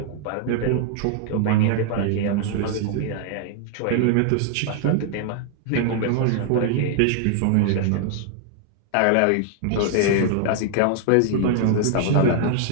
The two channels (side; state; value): both; different; correlation 0.00